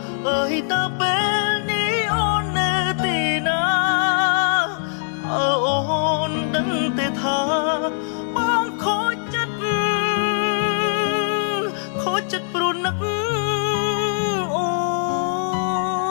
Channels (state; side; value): silent; right; digital silence